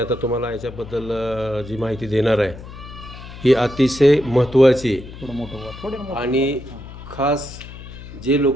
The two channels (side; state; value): left; noise; hum, 14 dB below the sound